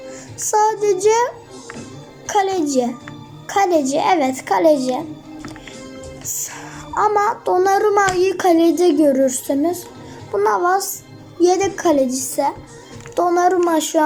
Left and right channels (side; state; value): both; identical; correlation 1.00